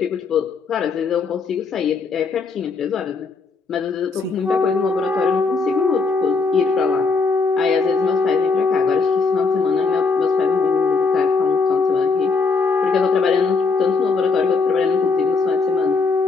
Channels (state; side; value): quieter; right; 4.5 dB